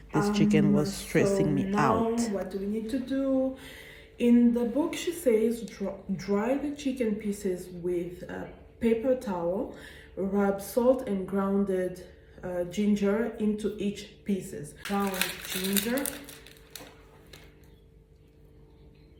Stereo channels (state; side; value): identical; both; correlation 1.00